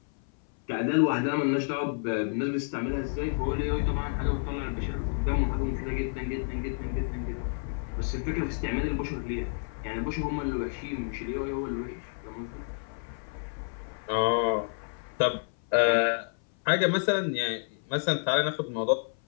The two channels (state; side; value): silent; right; 57 dB below the other